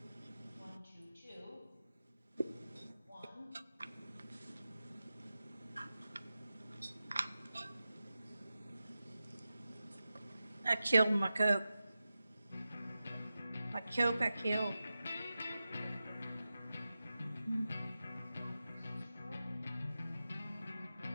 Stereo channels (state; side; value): inverted; both; correlation -0.93